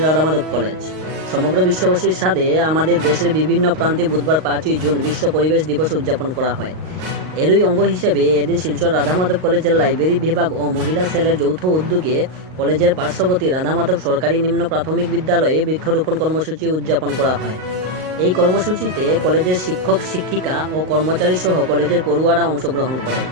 কলেজ। সমগ্র বিশ্ববাসীর সাথে আমাদের দেশের বিভিন্ন প্রান্তে বুধবার 5ই জুন বিশ্ব পরিবেশ দিবস উদযাপন করা হয়। এরই অঙ্গ হিসেবে এদিন শিলচর রাধামাধব কলেজের লাইব্রেরি বিভাগ ও মহিলা সেলের যৌথ উদ্যোগে কলেজের পার্শ্ববর্তী রাধামাধব সরকারি নিম্ন প্রাথমিক বিদ্যালয়ে বৃক্ষরোপণ কর্মসূচি উদযাপন করা হয়। এই কর্মসূচিতে কলেজের শিক্ষক শিক্ষিকা ও কর্মচারী সহ কলেজের পড়ুয়ারা অংশগ্রহণ করেন।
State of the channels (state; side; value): late; left; 38 ms